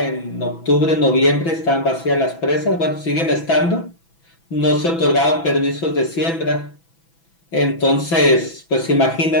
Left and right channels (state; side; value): late; right; 6.0 ms